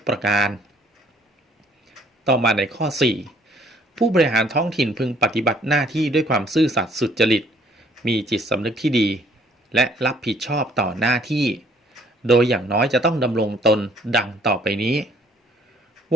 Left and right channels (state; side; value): normal; both; correlation 0.61